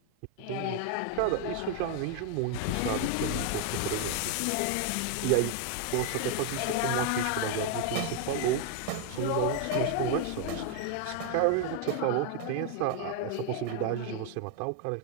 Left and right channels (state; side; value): different; both; correlation 0.01